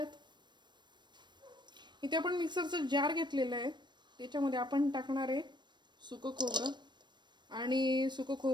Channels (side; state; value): left; late; 0.22 ms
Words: इथे आपण मिक्सरचा जार घेतलेला आहे, त्याच्यामध्ये आपण टाकणार आहे सुकं खोबरं। आणि सुकं